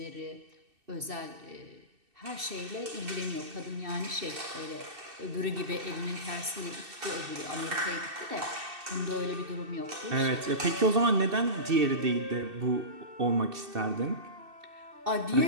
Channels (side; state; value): left; late; 2.6 ms